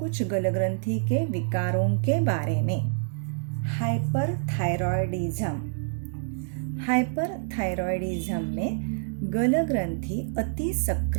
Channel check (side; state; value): left; silent; digital silence